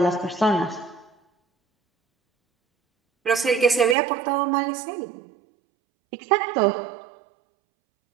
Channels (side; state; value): left; drops out; at 4.0 s